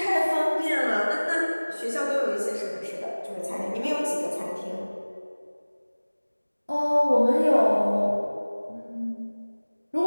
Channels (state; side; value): inverted; both; correlation -1.00